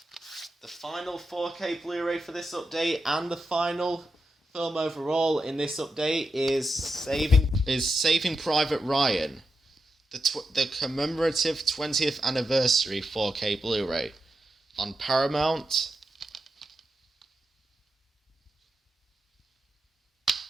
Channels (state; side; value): normal; both; correlation 0.87